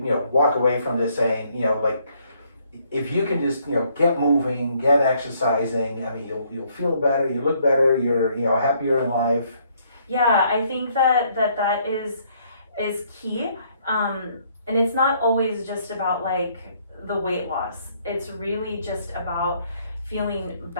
walk away from this saying, like, if you can just get moving, get exercising, I mean, you'll feel better, you look better, you're happier in life. Yeah, I think that is key, and it's not always just about like the weight loss. It's really just about feeling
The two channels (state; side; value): inverted; both; correlation -0.68